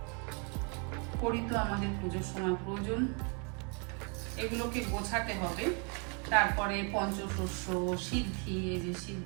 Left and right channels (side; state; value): left; quieter; 35.3 dB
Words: কড়ি তো আমাদের পুজোর সময় প্রয়োজন, এগুলোকে গোছাতে হবে। তারপরে পঞ্চশস্য, সিদ্ধি, এই যে